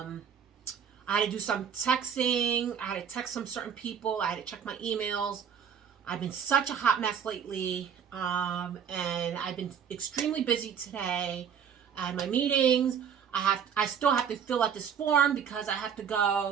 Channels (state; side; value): quieter; left; 7.7 dB